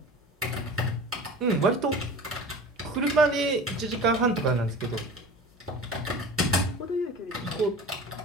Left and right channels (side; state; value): both; normal; correlation 0.37